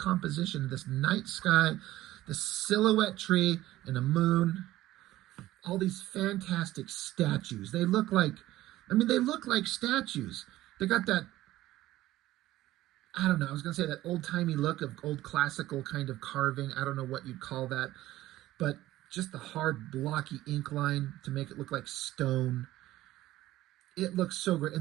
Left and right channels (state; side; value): quieter; left; 15.7 dB